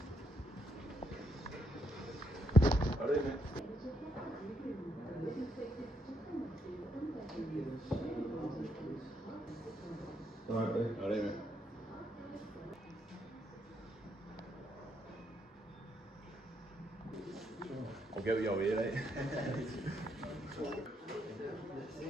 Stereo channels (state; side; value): normal; both; correlation 0.76